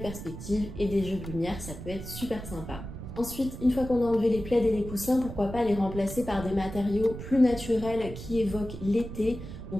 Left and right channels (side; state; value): right; noise; rumble, 10 dB below the sound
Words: et des jeux de lumière. Ça peut être super sympa. Ensuite, une fois qu'on a enlevé les plaids et les coussins, pourquoi pas les remplacer par des matériaux plus naturels qui évoquent l'été.